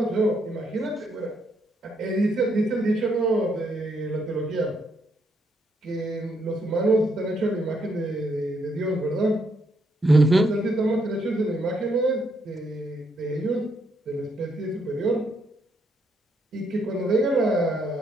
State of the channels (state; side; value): normal; both; correlation 0.75